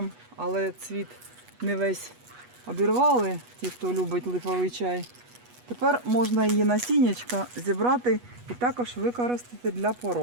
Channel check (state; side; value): late; left; 8.2 ms